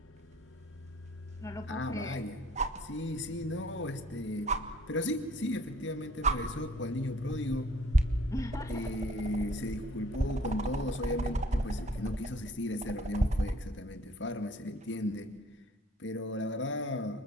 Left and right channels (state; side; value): normal; both; correlation 0.57